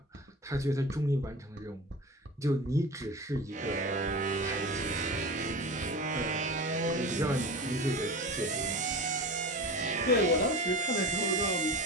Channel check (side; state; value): both; normal; correlation 0.30